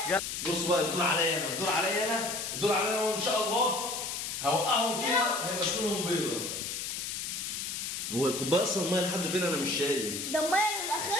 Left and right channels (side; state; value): left; noise; hiss, 4 dB below the sound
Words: بص بقى الدور عليا انا وان شاء الله هوقعهم فيها هيبقى اسنانهم بيضه. هو الكوبايه اصلا الميه لحد فين؟ انا مش شايف. ده الميه من